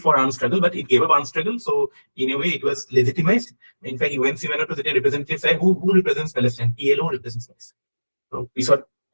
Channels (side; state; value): both; inverted; correlation -1.00